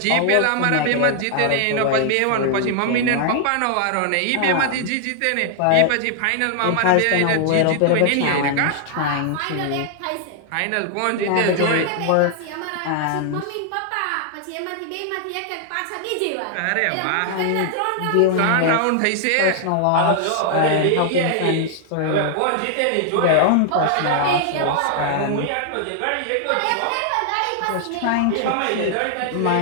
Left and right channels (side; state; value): both; different; correlation 0.00